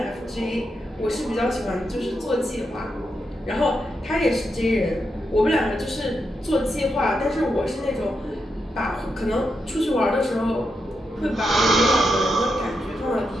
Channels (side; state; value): both; normal; correlation 0.84